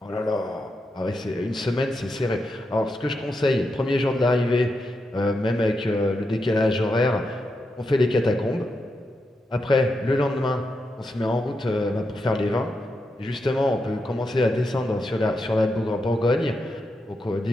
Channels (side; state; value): both; normal; correlation 0.85